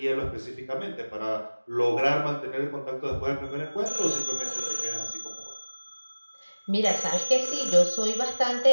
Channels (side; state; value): both; inverted; correlation -1.00